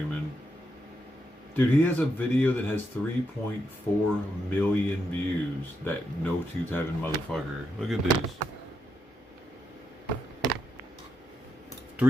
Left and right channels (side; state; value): both; normal; correlation 0.81